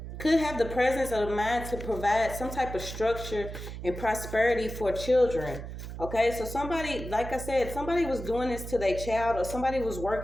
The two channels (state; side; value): noise; right; hum, 9 dB below the sound